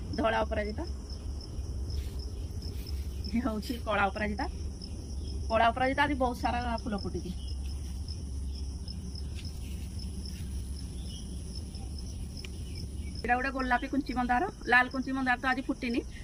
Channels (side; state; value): both; identical; correlation 1.00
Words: धला अपराजिता ये हूँ कला अपराजिता आज बहुत सारा फुल फुटी यहाँ गोटे गोलापी कुंची मंदार लाल कुंची मंदार तो आज फुटिनी